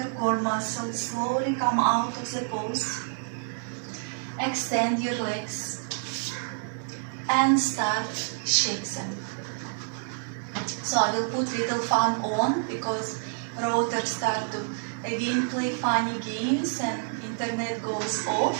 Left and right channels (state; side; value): silent; left; digital silence